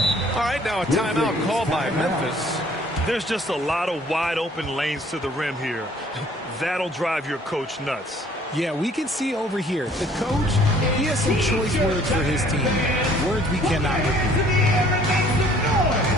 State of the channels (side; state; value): both; normal; correlation 0.57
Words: All right, now a timeout called by Memphis. There's just a lot of wide open lanes to the rim here. That'll drive your coach nuts. Yeah, we can see over here. The coach, he has some choice words for his team. Words we cannot repeat.